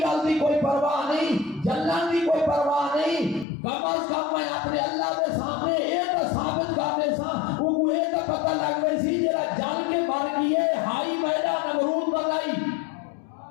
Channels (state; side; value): drops out; right; at 3.5 s